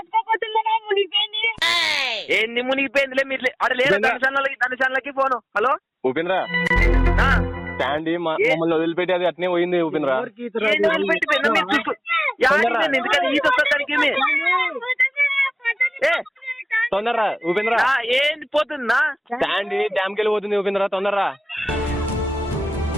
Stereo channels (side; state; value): both; normal; correlation 0.98